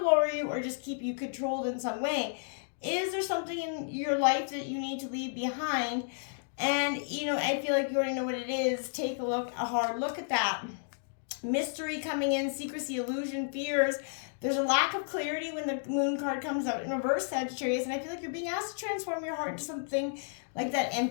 lure you or just keep you controlled in some way. Is there something in your life that you need to leave behind? And, I feel like you already know what it is. Take a hard look at that. Mystery coming in, secrecy, illusion, fears. There's a lack of clarity when the moon card comes out in reverse, Sagittarius, and I feel like you're being asked to transform your heart into something like that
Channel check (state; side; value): silent; right; digital silence